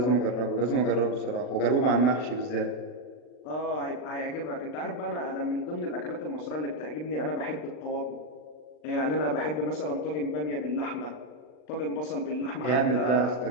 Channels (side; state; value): right; late; 40 ms